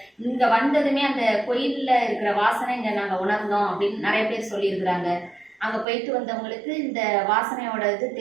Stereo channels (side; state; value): left; drops out; at 5.9 s